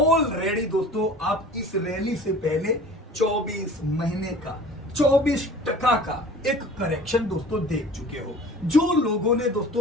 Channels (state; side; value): normal; both; correlation 0.43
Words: दोस्तों आप इस रैली से पहले 24 महीने का 24% का एक करेक्शन दोस्तों देख चुके हो। जो लोगों ने